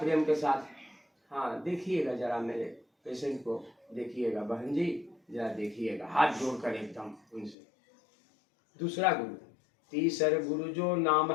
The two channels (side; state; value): right; drops out; at 7.6 s